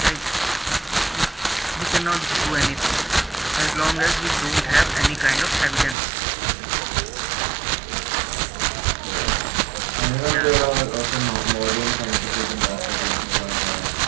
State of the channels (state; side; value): drops out; left; at 6.0 s